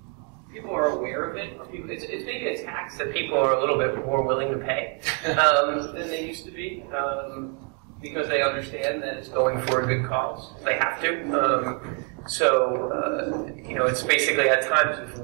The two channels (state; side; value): quieter; left; 37.9 dB